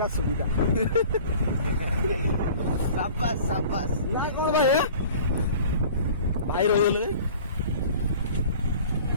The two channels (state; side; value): inverted; both; correlation -0.45